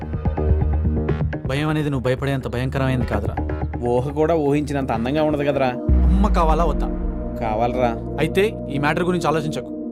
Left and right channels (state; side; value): identical; both; correlation 1.00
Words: భయం అనేది నువ్వు భయపడేంత భయంకరమైనది కాదురా. ఊహ కూడా ఊహించినంత అందంగా ఉండదు కదరా. అమ్మ కావాలా వద్దా? కావాలరా. అయితే ఈ మ్యాటర్ గురించి ఆలోచించకు.